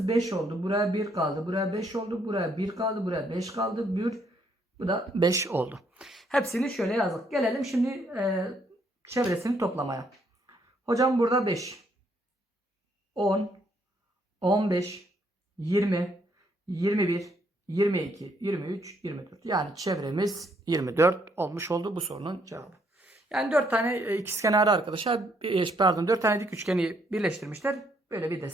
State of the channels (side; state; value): both; normal; correlation 0.70